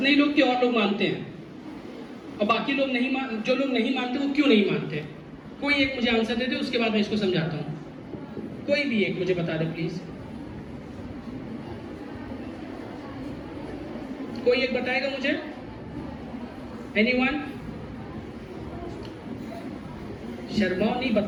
ही लोग कि और लोग मानते हैं? और बाकी लोग नहीं जो लोग नहीं मानते वो क्यों नहीं मानते? कोई एक मुझे आंसर दे दे, उसके बाद मैं इसको समझाता हूं। कोई भी एक मुझे बता दे प्लीज। कोई एक बताएगा मुझे? एनीवन? शर्माओ नहीं,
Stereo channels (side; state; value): both; identical; correlation 1.00